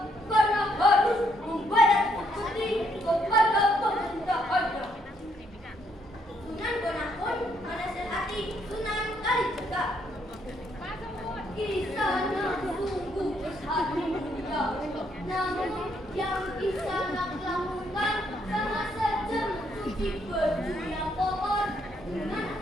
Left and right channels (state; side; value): normal; both; correlation 0.72